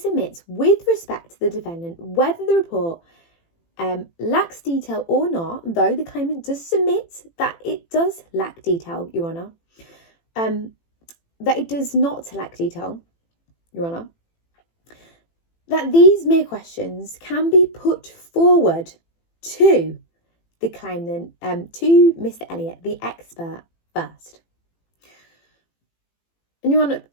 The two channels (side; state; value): right; late; 18 ms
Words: with respect to the defendant whether the report lacks detail or not, though the claimant does submit that it does lack detail, Your Honour, that it does not lack detail, Your Honour, that these mere questions can be put forward to the claimant, to Mr. Elliott, the expert, first. And Your Honour,